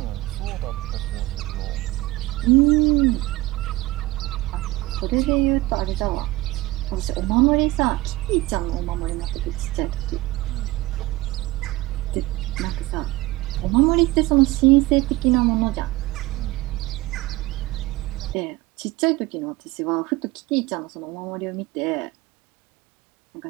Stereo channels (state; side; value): quieter; left; 19.1 dB